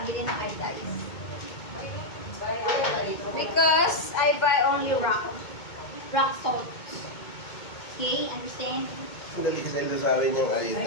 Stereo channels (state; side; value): late; right; 2.2 ms